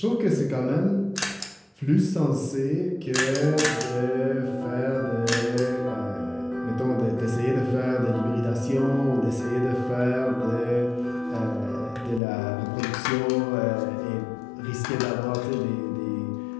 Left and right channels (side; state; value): right; drops out; at 12.2 s